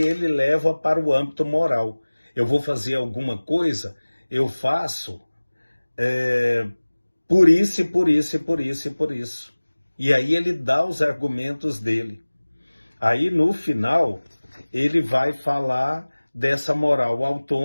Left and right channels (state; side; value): inverted; both; correlation -1.00